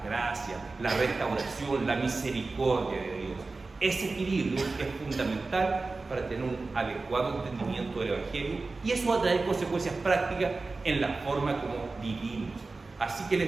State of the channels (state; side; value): quieter; left; 3.7 dB